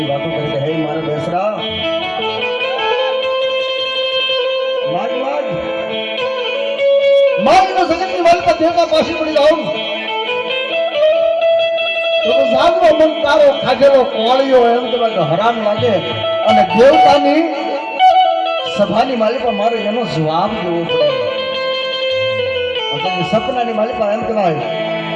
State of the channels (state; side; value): identical; both; correlation 1.00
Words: વાતો કરી કે હે મારા બેસરા માગનો જગતની માલપા દેવતા પાછી પડી જાઉં તો જાગનો મન તારો ખાધેલો કોળિયો એમ કે હરામ લાગે અને દેવતાની સભાની માલિકા મારો એનો જવાબ દેવો પડે. સપનાની માલિકા એમ કહેવાય